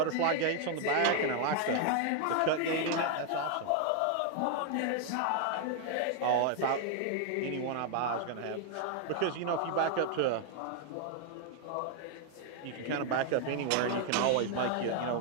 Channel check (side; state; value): both; different; correlation 0.00